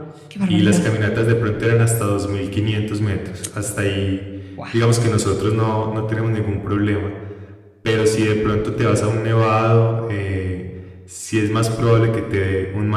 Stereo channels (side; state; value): both; identical; correlation 1.00